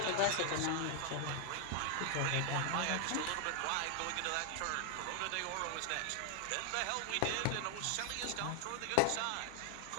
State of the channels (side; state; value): both; different; correlation 0.00